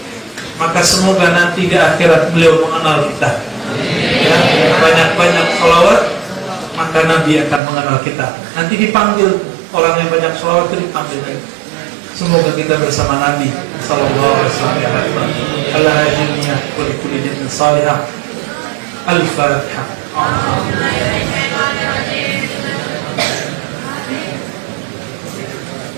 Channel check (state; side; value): drops out; left; at 7.6 s